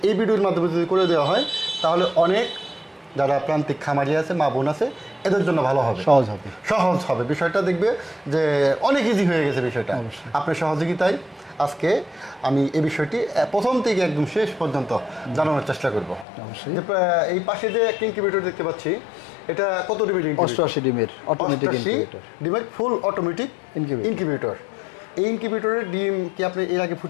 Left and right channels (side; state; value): right; drops out; at 16.2 s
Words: এই ভিডিওর মাধ্যমে যদি করে দেওয়া হয়, তাহলে অনেক যারা প্রান্তিক খামারি আছে, মা বোন আছে, এদের জন্য ভালো হবে, সহজ হবে বিষয়টা। দেখবে যে অনেক ইজি হয়ে গেছে বিষয়টা। আপনার সহযোগিতায় আজকে আমি এই বিষয়টি প্রথম থেকে একদম শেষ পর্যন্ত জানানোর চেষ্টা করব। যে এই পাশে যে একটা ইনকিউবেটর দেখতে পাচ্ছি, এটা কত ডিমের? 88 ডিমের, 88 ডিমের ফুল অটোমেটিক ইনকিউবেটর। এই ইনকিউবেটরের ডিম কি আপনি এর আগে